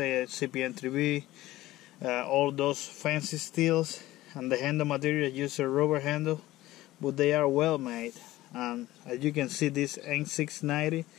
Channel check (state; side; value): quieter; right; 16.6 dB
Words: CPN3B, all those fancy steels, and the handle material use a rubber handle, but they are well made. And as you can see, this N690,